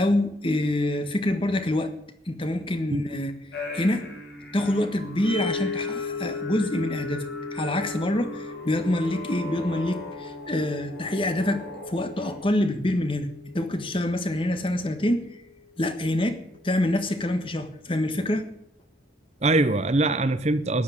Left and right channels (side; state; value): both; normal; correlation 0.70